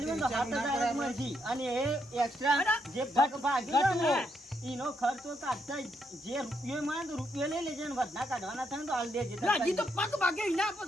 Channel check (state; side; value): normal; both; correlation 0.78